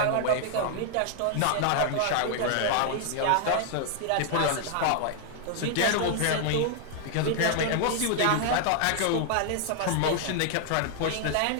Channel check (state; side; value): different; both; correlation 0.00